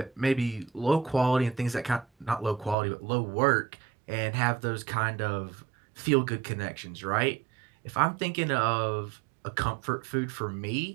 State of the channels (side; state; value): left; drops out; at 2.8 s